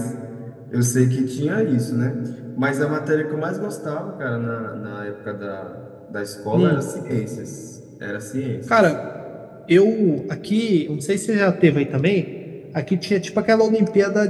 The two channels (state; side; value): identical; both; correlation 1.00